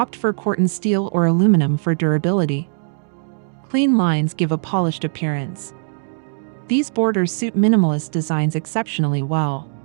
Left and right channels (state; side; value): silent; left; digital silence